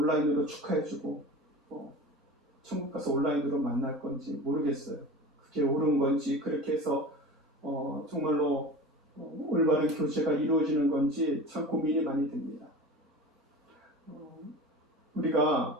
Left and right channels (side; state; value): both; normal; correlation 0.34